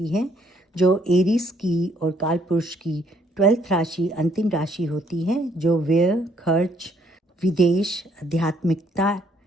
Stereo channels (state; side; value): normal; both; correlation 0.67